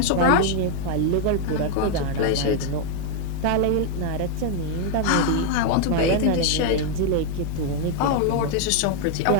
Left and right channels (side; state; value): both; different; correlation 0.00